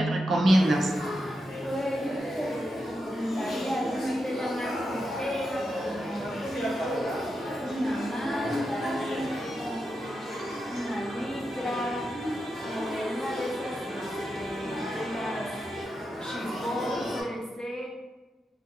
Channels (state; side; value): normal; both; correlation 0.87